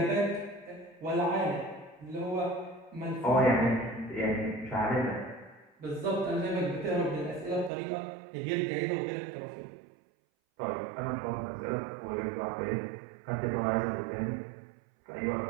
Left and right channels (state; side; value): drops out; left; at 7.7 s